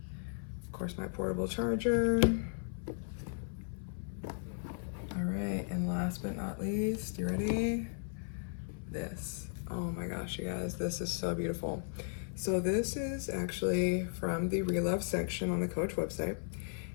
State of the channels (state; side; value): silent; right; 54 dB below the other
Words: Of course, my portable charger. All right, and last but not least, you ready? This. Oh my gosh, you guys, this is so beautiful. So this is actually from the Relove section on the Coach website.